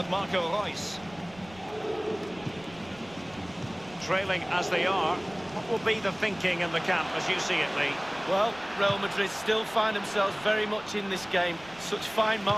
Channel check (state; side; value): noise; right; rumble, 22 dB below the sound